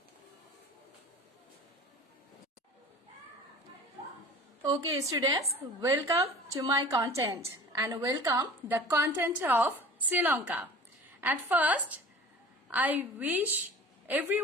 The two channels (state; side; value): normal; both; correlation 0.42